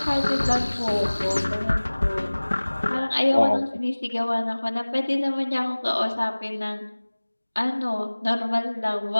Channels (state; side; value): inverted; both; correlation -1.00